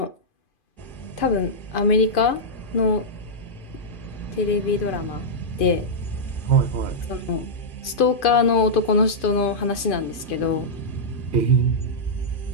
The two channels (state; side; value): late; right; 2.5 ms